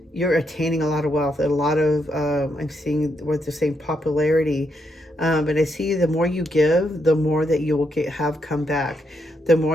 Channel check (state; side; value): normal; both; correlation 0.79